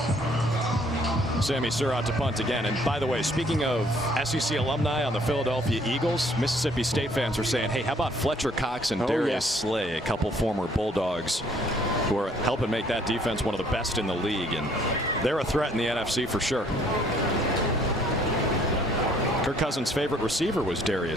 Sammy Surratt to punt again. And by the way, speaking of SEC alumni on the Philadelphia Eagles, Mississippi State fans are saying, hey, how about Fletcher Cox and Darius Slay, a couple former Bulldogs who are helping make that defense one of the best in the league. And they're a threat in the NFC for sure. Kirk Cousins' favorite receiver was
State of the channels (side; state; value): both; normal; correlation 0.62